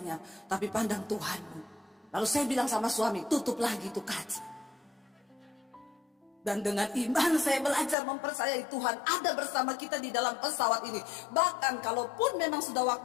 tapi pandang Tuhanmu. Lalu saya bilang sama suami, tutup lagi itu kaca. Dan dengan iman saya belajar mempercayai Tuhan ada bersama kita di dalam pesawat ini. Bahkan kalaupun memang sudah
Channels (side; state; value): right; drops out; at 8.0 s